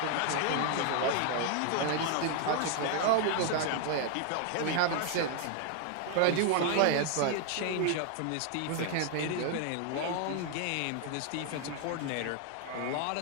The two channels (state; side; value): different; both; correlation 0.00